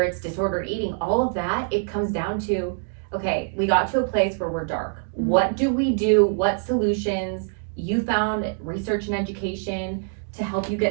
it's disordered eating, all of that. It comes down to, okay, we got to a place where we're dark. What do we do? What solutions? You found research and education to help you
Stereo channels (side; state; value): left; silent; digital silence